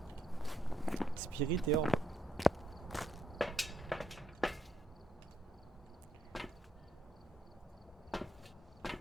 Spirit et orbe.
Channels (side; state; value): both; normal; correlation 0.76